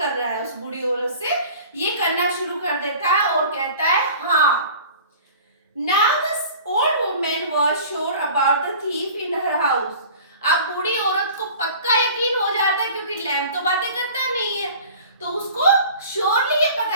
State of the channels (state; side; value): inverted; both; correlation -0.43